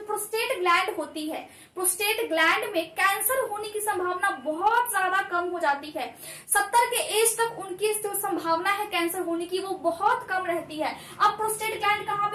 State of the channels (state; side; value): identical; both; correlation 1.00